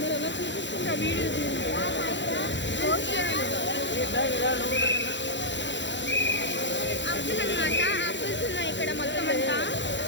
ఎలా చూపిస్తుంటే ఆ వీడియో ఆపిల్ అనమాట. ఆపిల్స్ ఉన్నాయి ఇక్కడ మొత్తం అంతా.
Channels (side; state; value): right; late; 0.53 ms